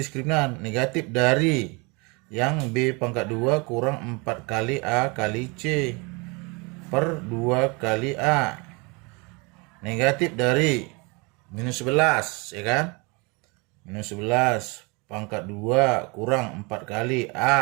diskriminan? Negatif dari yang B pangkat 2 kurang 4 kali A kali C per 2 kali A. Negatif dari minus 11, ya kan? Minus 11 pangkat 2 kurang 4 kali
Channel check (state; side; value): quieter; left; 29.2 dB